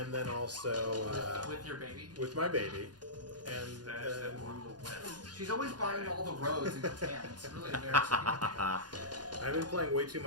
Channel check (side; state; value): left; late; 0.69 ms